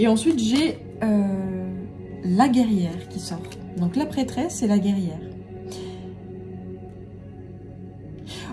ensuite, j'ai la guerrière qui sort. Donc la prêtresse et la guerrière.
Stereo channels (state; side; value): identical; both; correlation 1.00